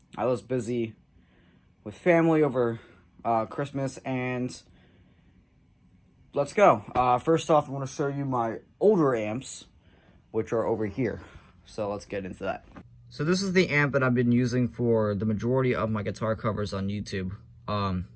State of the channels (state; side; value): identical; both; correlation 1.00